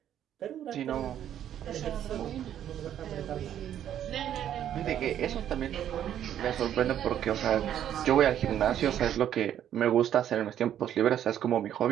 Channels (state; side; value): quieter; left; 10.5 dB